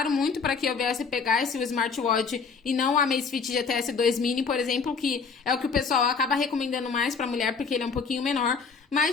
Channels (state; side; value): quieter; right; 5.3 dB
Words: muito para que eu viesse pegar esse smartwatch e não o Amazfit GTS 2 Mini, por exemplo, que é o que o pessoal acaba recomendando mais para mulher porque ele é um pouquinho menor.